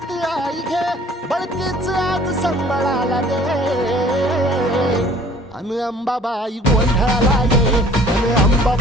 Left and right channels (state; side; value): normal; both; correlation 0.52